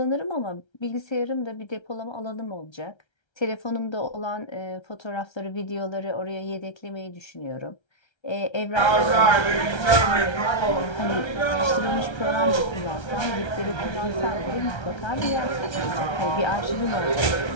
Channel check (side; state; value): right; late; 1.3 ms